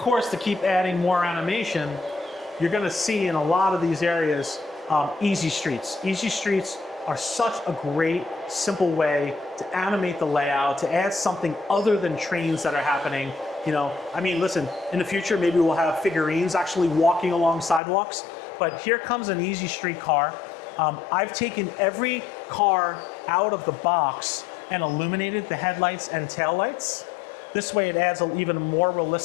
to keep adding more animation, you're gonna see in a lot of these areas, easy streets. Easy streets are such a great, simple way to animate the layout, to add something other than trains that are happening. You know, I mean, listen, in the future, maybe we'll have figurines actually walking along sidewalks, but here comes an easy street car. I've taken every car out of the box and illuminated the headlights and taillights. This way it adds an even more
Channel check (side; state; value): right; drops out; at 17.8 s